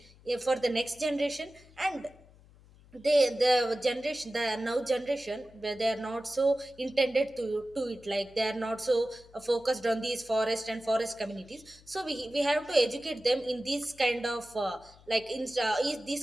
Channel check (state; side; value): noise; left; hum, 25 dB below the sound